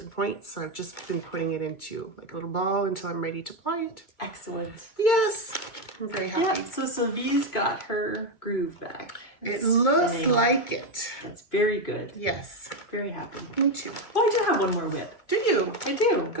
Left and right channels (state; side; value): late; right; 2.2 ms